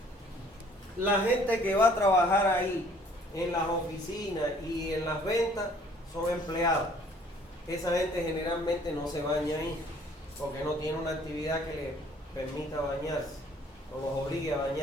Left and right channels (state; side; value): normal; both; correlation 0.58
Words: La gente que va a trabajar ahí, en las oficinas y en las ventas, son empleados. Esa gente generalmente no se baña ahí, porque no tiene una actividad que le permita bañarse, o los obligue a